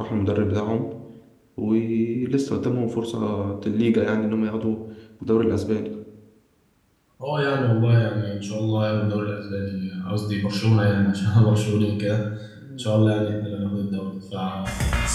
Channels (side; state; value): both; identical; correlation 1.00